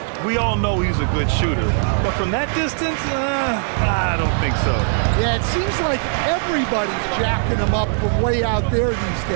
We all know he's a good shooter, but from that distance, I don't think so. Yeah, it seems like everybody's jacking him up from way out there these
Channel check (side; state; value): left; silent; 60 dB below the other